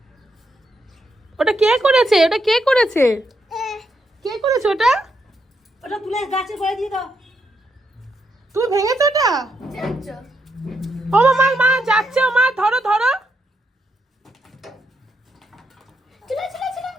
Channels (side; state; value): both; normal; correlation 0.79